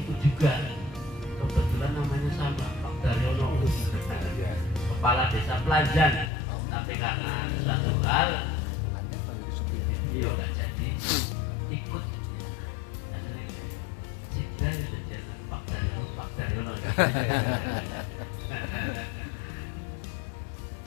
itu juga kebetulan namanya sama, Pak Daryono, kepala desa Pelanjan. Tapi karena suatu hal beliau nggak jadi ikut, Cida itu jangan Pak Daryono.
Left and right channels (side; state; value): right; drops out; at 6.3 s